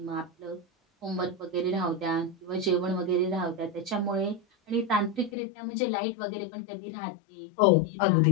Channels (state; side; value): drops out; right; at 5.3 s